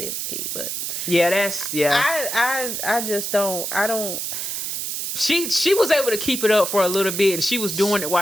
it was key. But. Yeah, I just don't. I don't. She was able to keep it up for a little bit, and she was doing it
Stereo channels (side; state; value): right; noise; hiss, 3 dB below the sound